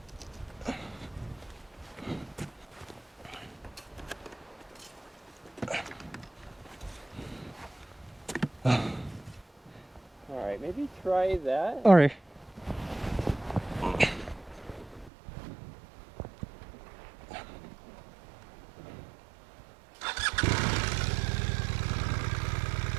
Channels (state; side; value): drops out; left; at 15.1 s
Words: Alright, maybe try that. All right.